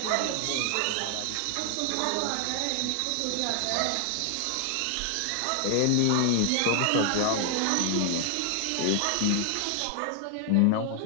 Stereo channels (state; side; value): different; both; correlation 0.00